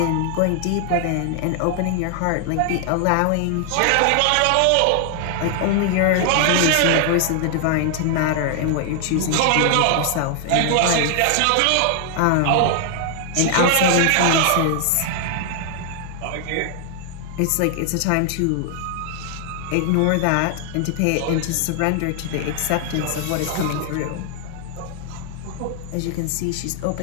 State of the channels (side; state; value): both; different; correlation 0.00